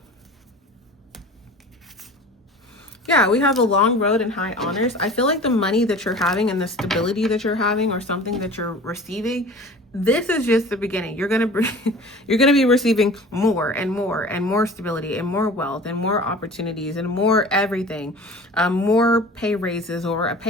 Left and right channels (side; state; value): both; normal; correlation 0.41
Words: Yeah, we have a long road and high honors. I feel like the money that you're having and the stability that you're having, or something that you're receiving, this is just the beginning. You're gonna be receiving more and more and more stability and more wealth and more opportunities and more everything, more pay raises or a